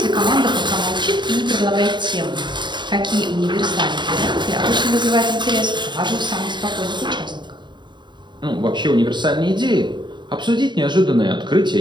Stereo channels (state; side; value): late; left; 0.22 ms